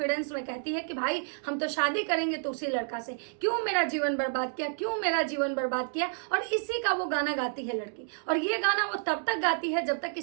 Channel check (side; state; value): left; silent; digital silence